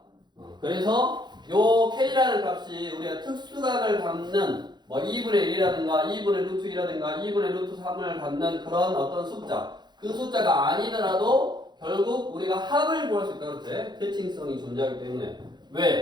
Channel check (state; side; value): late; left; 0.21 ms